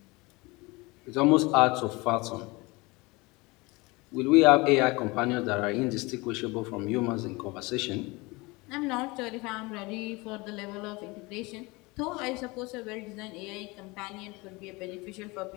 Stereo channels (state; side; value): quieter; right; 24.4 dB